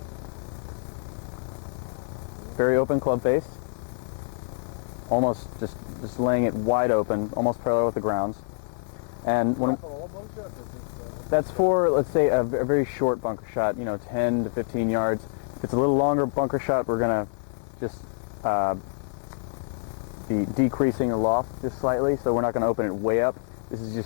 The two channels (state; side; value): silent; right; digital silence